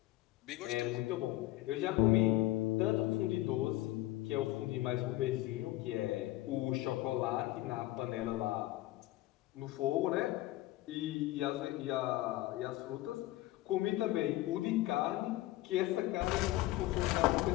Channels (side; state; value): right; quieter; 16.7 dB